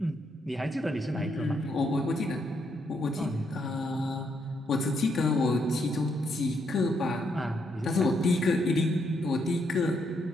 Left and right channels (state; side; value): normal; both; correlation 0.77